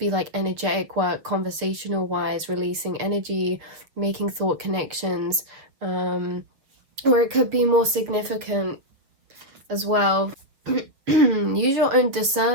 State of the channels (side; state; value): left; late; 7.0 ms